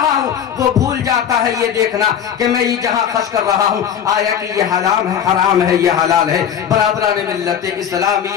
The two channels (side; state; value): right; quieter; 8.8 dB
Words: ہوں وہ بھول جاتا ہے یہ دیکھنا کہ میں یہ جہاں خرچ کر رہا ہوں آیا کہ یہ حرام ہے، حرام ہے، یہ حلال ہے. برادران ملت